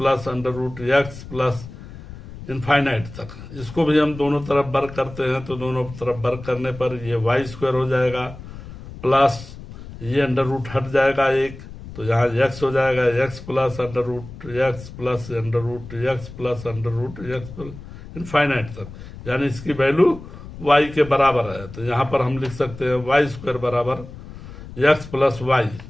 under root x plus infinite तक। इसको भी हम दोनों तरफ वर्ग करते हैं तो दोनों तरफ वर्ग करने पर ये वाई स्क्वायर हो जाएगा प्लस ये अंडर रूट हट जाएगा एक तो यहाँ एक्स हो जाएगा x plus under root x plus under root x plus under root x infinite तक, यानी इसकी वैल्यू वाई के बराबर है। तो यहाँ पर हम लिख सकते हैं वाई स्क्वायर बराबर एक्स प्लस वाई।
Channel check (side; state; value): left; noise; rumble, 14 dB below the sound